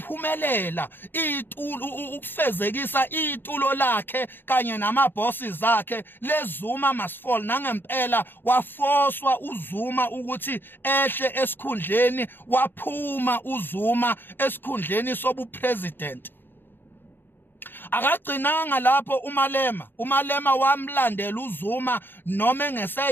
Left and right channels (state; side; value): late; right; 0.098 ms